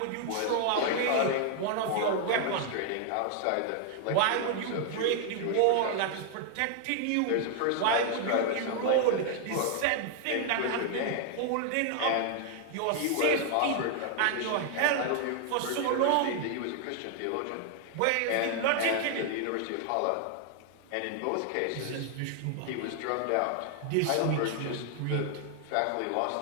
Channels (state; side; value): different; both; correlation 0.00